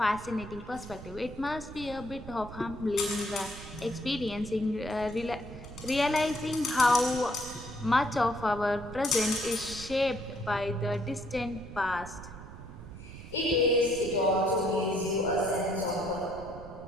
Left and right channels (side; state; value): right; noise; rumble, 13 dB below the sound